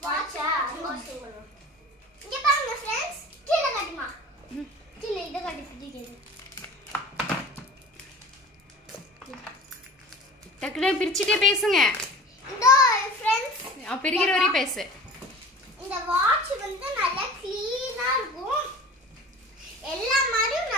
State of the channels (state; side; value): normal; both; correlation 0.40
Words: வாட்சா அன்பாக்சிங் பண்ணுவோம். இங்க பாருங்க फ्रेंड्स, கீழ காட்டுமா. கீழ இத காட்டி பிடிக்குது. டக்குனு பிரிச்சிட்டே பேசுங்க. இதோ फ्रेंड्स, பிரிக்கிற வரை பேசு. இந்த வாட்ச் வந்து நல்லா க்ளீனா இருக்கும். எல்லா மாதிரியும்